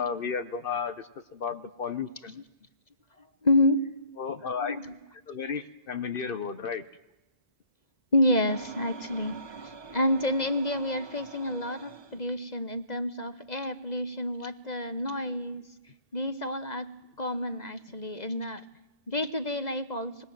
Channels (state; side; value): late; right; 2.0 ms